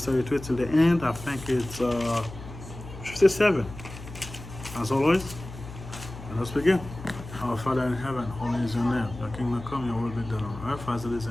32 till the end. I think it's 57. As always, let us begin. Our Father in heaven, holy is your name. Your kingdom come, your will be done on earth as it is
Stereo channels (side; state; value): left; noise; hum, 13 dB below the sound